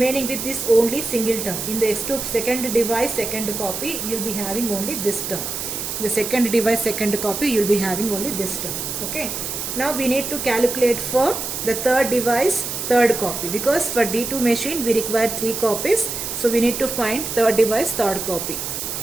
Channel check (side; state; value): right; noise; hiss, 4 dB below the sound